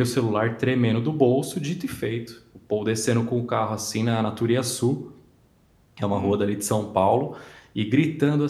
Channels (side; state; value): both; identical; correlation 1.00